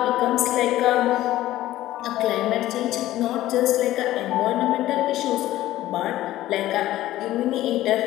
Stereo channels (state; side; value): quieter; right; 14.9 dB